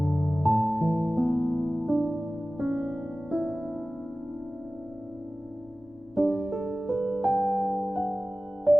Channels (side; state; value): both; normal; correlation 0.97